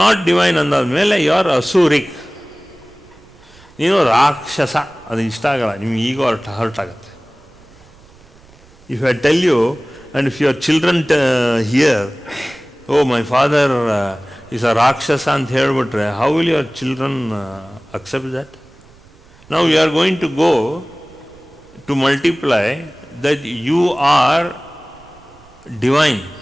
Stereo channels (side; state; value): right; noise; rumble, 27 dB below the sound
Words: not divine ಅಂದಾದ್ಮೇಲೆ you are asuric. ನೀನು ರಾಕ್ಷಸ. ಅದು ಇಷ್ಟ ಆಗಲ್ಲ, ನಿಮ್ಗೆ ಈಗೋ hurt ಆಗುತ್ತೆ. If I tell you, and if your children hear, oh my father is a rakshasa ಅಂತ ಹೇಳ್ಬಿಟ್ರೆ, how will your children accept that? Now you are going to go to multiply that you are divine.